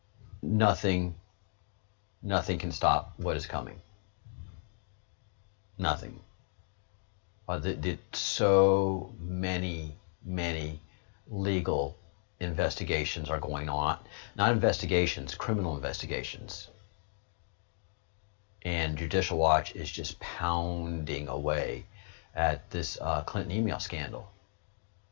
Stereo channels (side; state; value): right; silent; digital silence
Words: nothing can stop what is coming. Nothing. So many legal investigations are going on. Not investigations, criminal investigations. And Judicial Watch is just pounding away at this Clinton email scandal